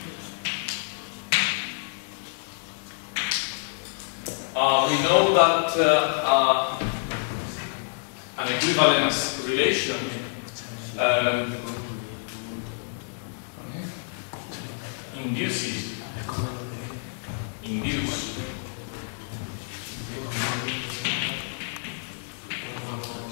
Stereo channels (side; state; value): right; silent; digital silence